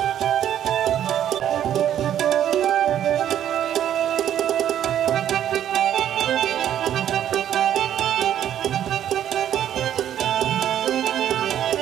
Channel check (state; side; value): quieter; left; 10.7 dB